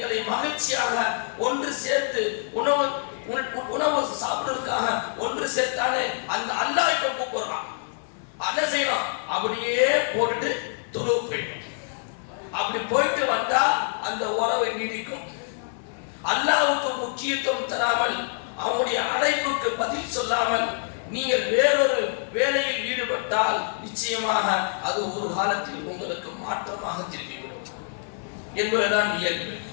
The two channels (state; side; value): silent; right; 60 dB below the other